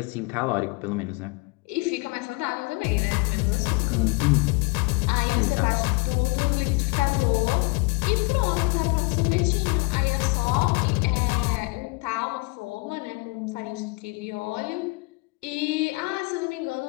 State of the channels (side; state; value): right; quieter; 26.9 dB